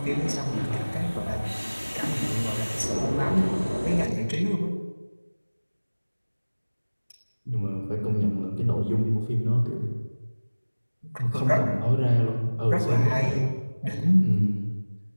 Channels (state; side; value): inverted; both; correlation -1.00